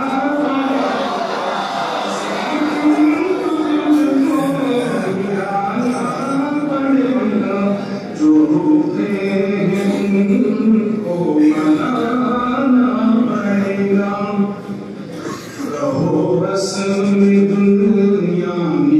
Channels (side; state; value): both; identical; correlation 1.00